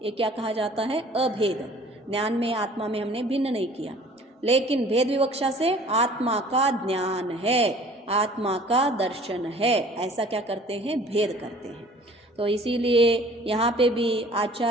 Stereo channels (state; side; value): normal; both; correlation 0.50